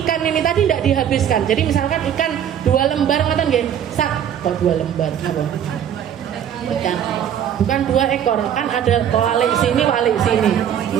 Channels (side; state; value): left; quieter; 9.5 dB